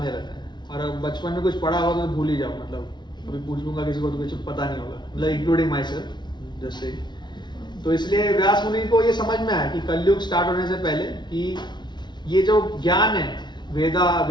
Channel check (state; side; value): late; right; 0.21 ms